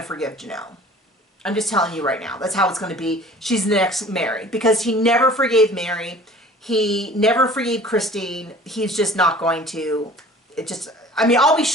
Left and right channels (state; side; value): normal; both; correlation 0.47